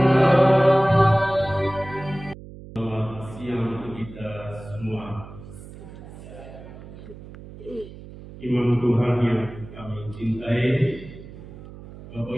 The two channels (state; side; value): noise; right; hum, 16 dB below the sound